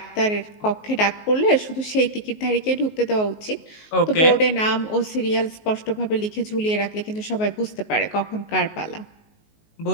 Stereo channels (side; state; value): right; late; 19 ms